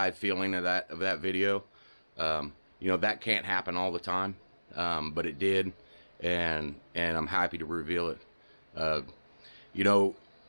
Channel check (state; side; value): inverted; both; correlation -1.00